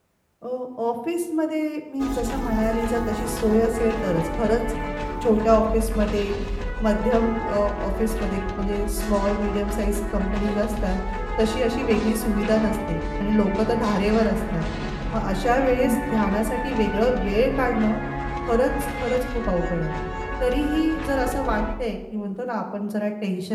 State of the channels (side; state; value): both; identical; correlation 1.00